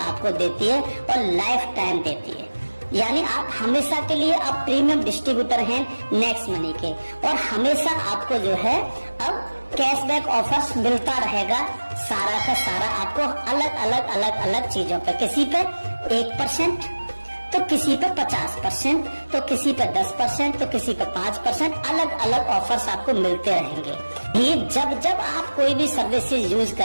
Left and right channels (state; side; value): inverted; both; correlation -1.00